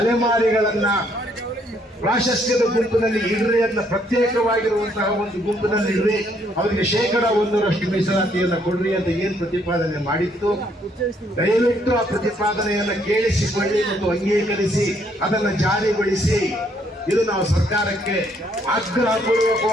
ಪ್ರಾಶಸ್ತ್ಯದ ಗುಂಪಿನಲ್ಲಿ ಇಡ್ರಿ, ಅದನ್ನ ಪ್ರತ್ಯೇಕವಾಗಿರುವಂತಹ ಒಂದು ಗುಂಪಿನಲ್ಲಿ ಇಡ್ರಿ, ಅವರಿಗೆ 1% ಮೀಸಲಾತಿಯನ್ನು ಕೊಡ್ರಿ ಅಂತ ಏನ್ ಪ್ರತಿಪಾದನೆ ಮಾಡಿತ್ತು. ದಯವಿಟ್ಟು ಆ ಪ್ರತಿಪಾದನೆಯನ್ನ ಕೇಳಿಸಿಕೊಳ್ಳಿ ಮತ್ತು ಅಂಗೀಕರಿಸಿ ಅದನ್ನ ಜಾರಿಗೊಳಿಸಿ. ಇದು ನಾವು ಸರ್ಕಾರಕ್ಕೆ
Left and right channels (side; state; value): both; normal; correlation 0.69